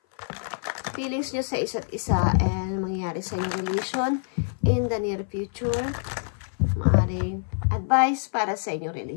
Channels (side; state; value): right; silent; 57 dB below the other